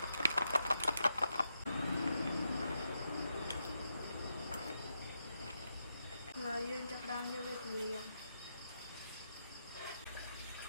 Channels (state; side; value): inverted; both; correlation -0.83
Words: យើងចាប់ដើមយកវាទៅលាង